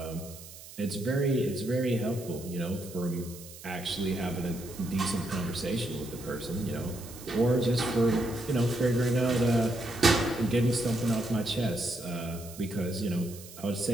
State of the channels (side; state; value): right; noise; hiss, 16 dB below the sound